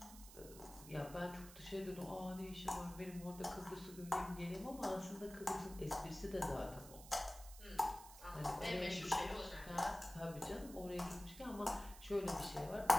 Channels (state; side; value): noise; right; hiss, 16 dB below the sound